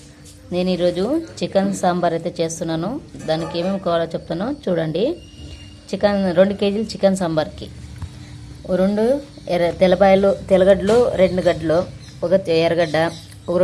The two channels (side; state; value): both; identical; correlation 1.00